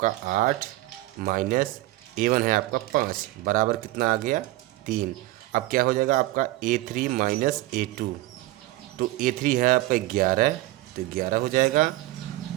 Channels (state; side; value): quieter; left; 17.7 dB